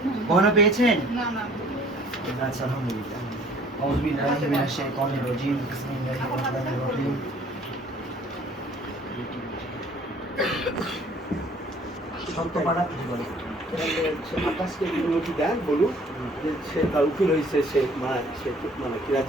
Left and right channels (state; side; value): normal; both; correlation 0.55